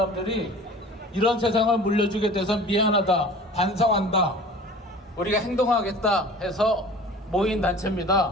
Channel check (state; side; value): normal; both; correlation 0.43